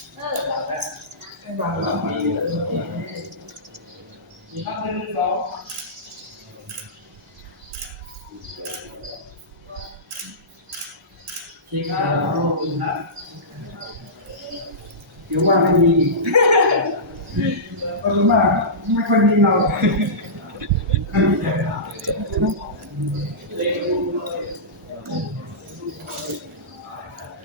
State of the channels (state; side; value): normal; both; correlation -0.18